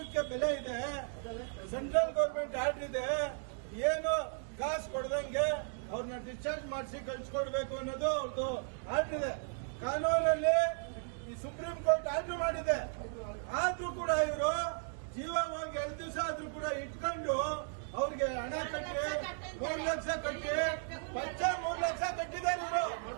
ಬೆಲೆ ಇದೆ. ಸೆಂಟ್ರಲ್ ಗೌರ್ಮೆಂಟ್ ಆರ್ಡರ್ ಇದೆ. ಏನು ಕಾಸು ಕೊಡದಂಗೆ ಅವ್ರನ್ನ ಡಿಸ್ಚಾರ್ಜ್ ಮಾಡಿಸಿ ಕಳ್ಸಿಕೊಡ್ಬೇಕು ಅನ್ನೋದು ಅವ್ರದ್ದು ಆರ್ಡರ್ ಇದೆ. ಕಾನೂನಲ್ಲಿ ಈ ಸುಪ್ರೀಂ ಕೋರ್ಟ್ ಆರ್ಡರ್ ಮಾಡಿದೆ. ಆದ್ರೂ ಕೂಡ ಇವರು ಜೀವ ಹೋಗಿ 2 ದಿವಸ ಆದ್ರೂ ಕೂಡ ಇಟ್ಕೊಂಡು ಅವ್ರಿಗೆ ಹಣ ಕಟ್ಟಿ 3 ಲಕ್ಷ ಕಟ್ಟಿ ಪಚ್ಚ 3 ಲಕ್ಷ ಕಟ್ಟಿದ್ದಾರೆ.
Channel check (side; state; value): left; silent; 54 dB below the other